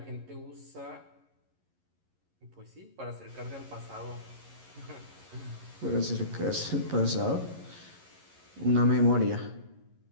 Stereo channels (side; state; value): left; late; 11 ms